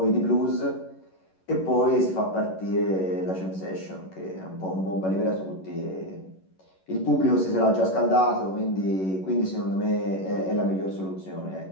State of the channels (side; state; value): right; late; 11 ms